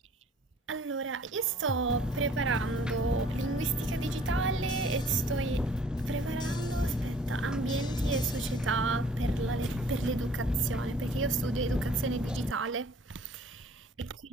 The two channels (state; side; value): normal; both; correlation 0.54